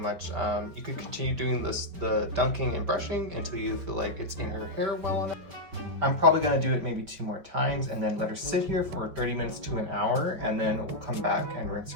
You could continue doing the dunking and brushing until you feel like it's in her hair well enough. I'm probably going to do it maybe 2 more times and then let her sit here for 30 minutes to an hour, and then we'll come back and rinse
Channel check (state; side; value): late; left; 5.1 ms